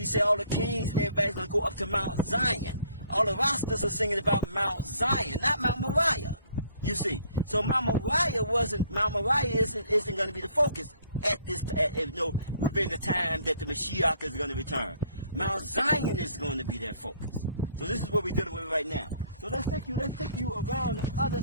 say all the kings and everybody's going to go up to Mount Zion. All the rosters are singing about Mount Zion, not Mount Moriah. You see, so Mount Moriah isn't going to be the focus at this, within the time that the Mashiach is going to return. Mount Zion is going to be their focus. So this is what we're dealing with right now. So let's take you around the other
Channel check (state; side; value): inverted; both; correlation -0.61